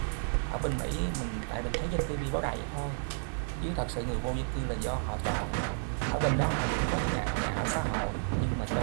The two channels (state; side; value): silent; left; digital silence